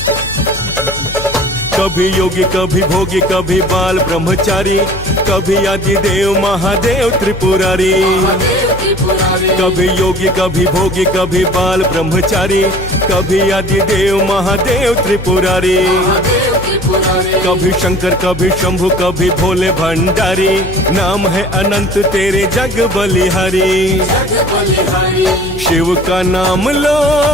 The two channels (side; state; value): left; noise; hum, 11 dB below the sound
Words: कभी योगी कभी भोगी कभी बाल ब्रह्मचारी, कभी आदिदेव महादेव त्रिपुरारी। महादेव त्रिपुरारी कभी योगी कभी भोगी कभी बाल ब्रह्मचारी, कभी आदिदेव महादेव त्रिपुरारी। महादेव त्रिपुरारी कभी शंकर कभी शंभु कभी भोले भंडारी। नाम है अनंत तेरे जग बलिहारी। जग बलिहारी शिव का नाम लो